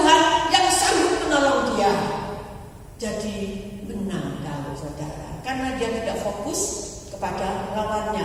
yang sanggup menolong dia. Jadi menang Daud, saudara, karena dia tidak fokus kepada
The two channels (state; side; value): identical; both; correlation 1.00